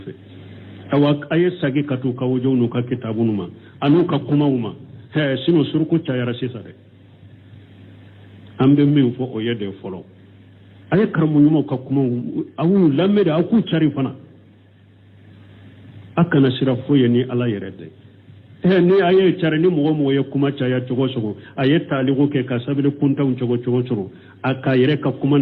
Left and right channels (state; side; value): identical; both; correlation 1.00